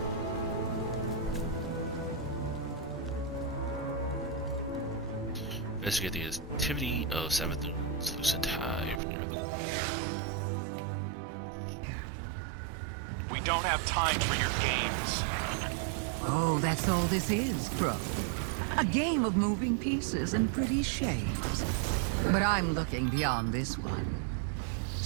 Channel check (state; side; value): drops out; left; at 9.0 s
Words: Investigate the activity of Savathun's Lucent Hive near the... We don't have time for your games. Oh, that's all this is, Crow. A game of moving pieces and pretty shapes. But I'm looking beyond this one.